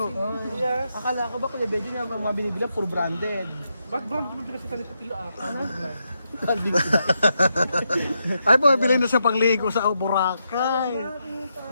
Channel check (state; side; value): inverted; both; correlation -0.83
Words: Akala ko ba Kuya Belgium yung mga binibila puro branded. Ba't ba mo pinagsasalita Pilo ata? Ay, bumibili na siya pangligo sa Boracay.